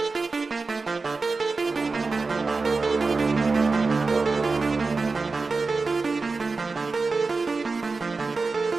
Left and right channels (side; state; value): left; quieter; 4.0 dB